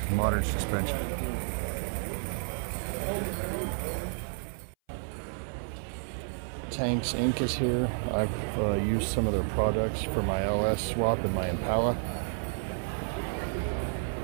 modern suspension. Tanks Inc. is here. I've used some of their products for my LS swap and my Impala.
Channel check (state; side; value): silent; left; 57 dB below the other